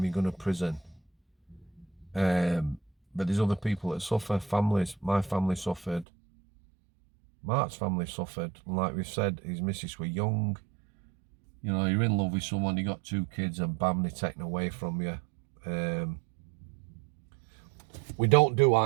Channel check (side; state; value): left; drops out; at 6.1 s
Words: you're going to prison. But there's other people that suffer, families. My family suffered. Mark's family suffered. And like we've said, his missus were young. You know, you're in love with someone, you got 2 kids, and bam, they're taken away from you. We don't do